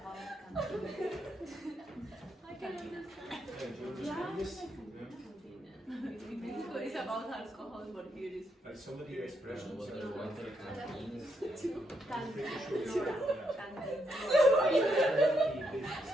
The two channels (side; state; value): both; normal; correlation 0.79